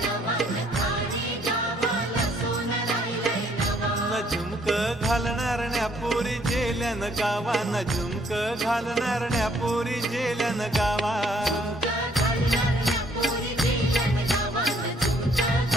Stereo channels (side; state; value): both; normal; correlation 0.65